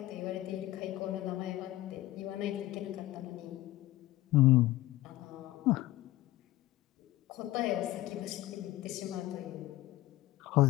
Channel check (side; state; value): right; quieter; 16.3 dB